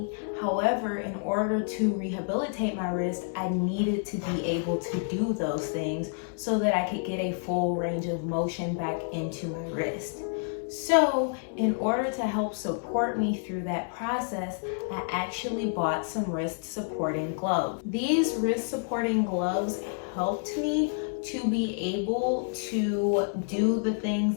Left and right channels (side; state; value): right; silent; 59 dB below the other